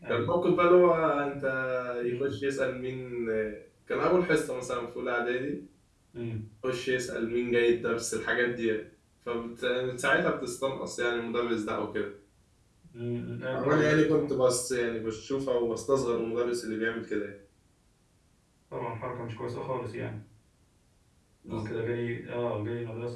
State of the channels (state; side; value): identical; both; correlation 1.00